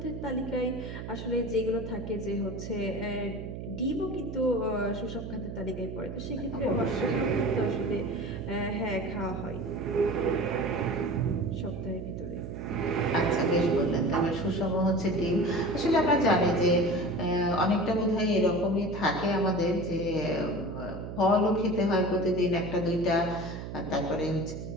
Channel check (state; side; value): noise; right; hum, 8 dB below the sound